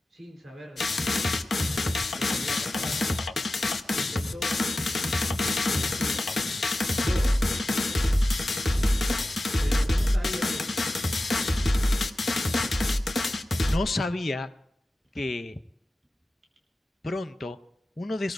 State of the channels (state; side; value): normal; both; correlation 0.95